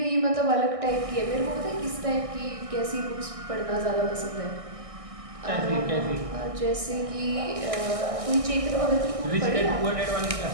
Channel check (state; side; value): late; left; 1.6 ms